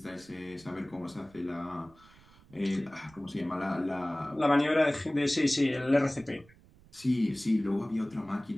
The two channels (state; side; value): noise; right; rumble, 26 dB below the sound